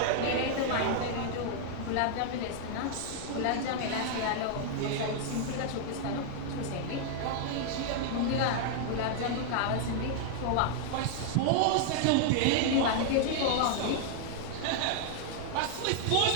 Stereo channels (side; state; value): both; different; correlation 0.00